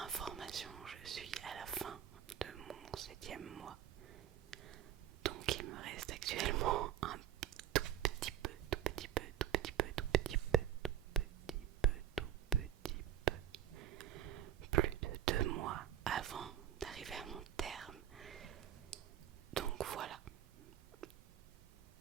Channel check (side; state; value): left; quieter; 10.9 dB